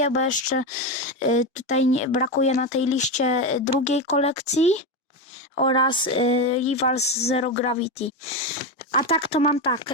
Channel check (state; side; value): normal; both; correlation 0.14